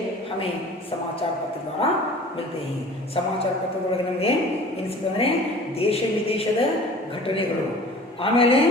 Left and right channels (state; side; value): normal; both; correlation 0.44